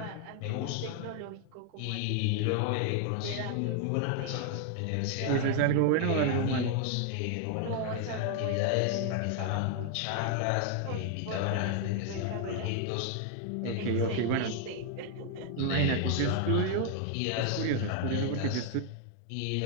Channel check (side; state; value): both; different; correlation 0.00